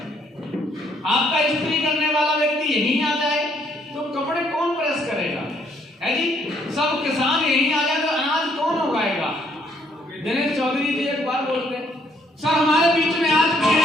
आपका इस्त्री करने वाला व्यक्ति यहीं आ जाए तो कपड़े कौन प्रेस करेगा, है जी। सब किसान यहीं आ जाए तो अनाज कौन उगाएगा। दिनेश चौधरी जी एक बार बोलते, सर हमारे बीच में आज भी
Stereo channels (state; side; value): normal; both; correlation 0.68